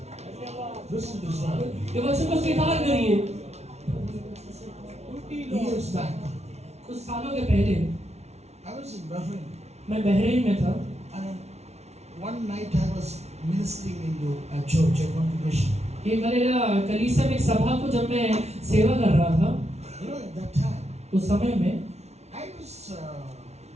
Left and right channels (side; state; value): left; late; 0.31 ms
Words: Receive this word. ये वचन को स्वीकार करिए। Years back, कुछ सालों के पहले I was in Bahrain, मैं बहरीन में था and one night I was ministering into a church, a congregation. एक हलेला कलीसिया में एक सभा को जब मैं सेवा कर रहा था You know, at that time, उस समय में I was